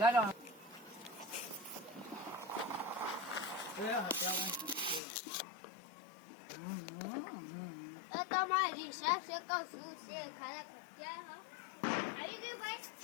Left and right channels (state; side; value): drops out; right; at 5.0 s